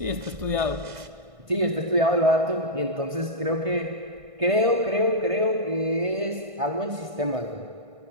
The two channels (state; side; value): late; left; 1.5 ms